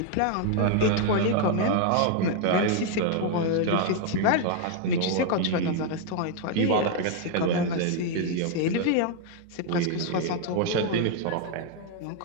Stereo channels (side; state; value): both; different; correlation 0.00